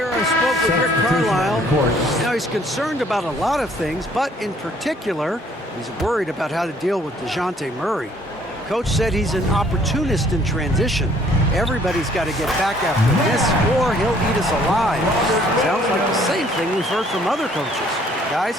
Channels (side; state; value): both; normal; correlation 0.60